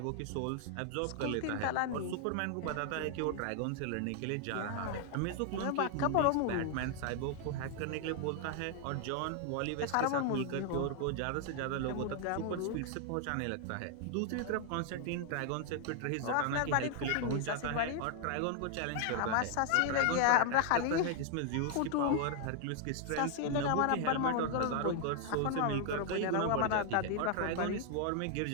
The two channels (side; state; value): both; different; correlation 0.00